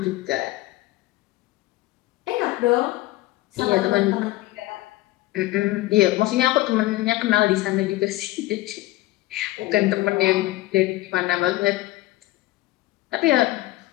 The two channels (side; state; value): right; quieter; 18.0 dB